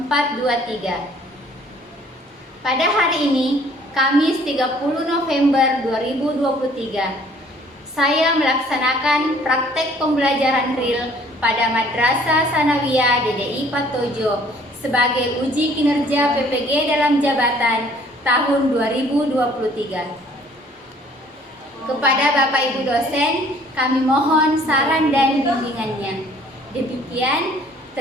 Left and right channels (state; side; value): normal; both; correlation 0.57